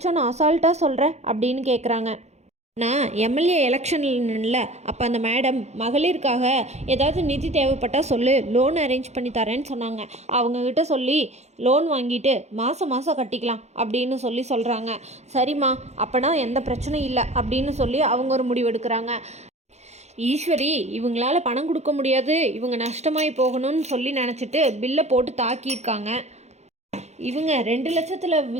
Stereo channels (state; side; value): late; left; 0.32 ms